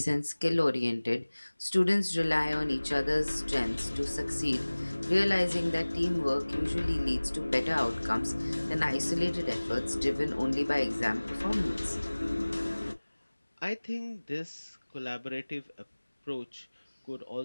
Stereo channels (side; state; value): both; inverted; correlation -1.00